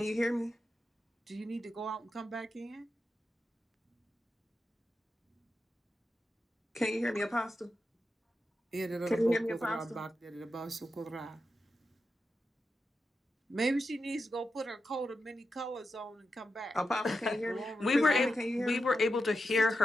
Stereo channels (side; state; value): both; normal; correlation 0.88